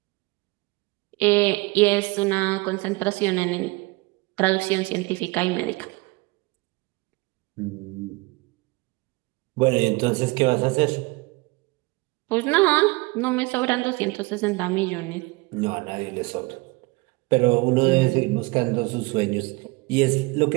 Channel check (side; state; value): left; quieter; 24.1 dB